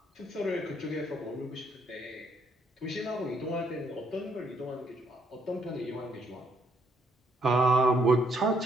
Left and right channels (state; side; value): normal; both; correlation 0.70